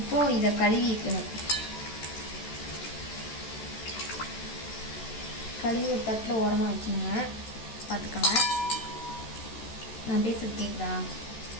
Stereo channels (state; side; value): late; right; 13 ms